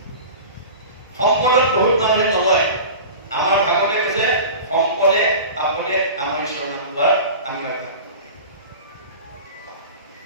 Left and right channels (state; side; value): inverted; both; correlation -0.35